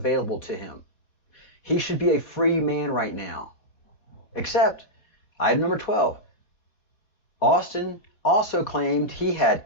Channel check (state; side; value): late; right; 4.0 ms